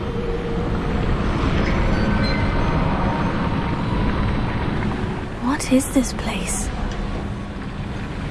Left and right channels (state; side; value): identical; both; correlation 1.00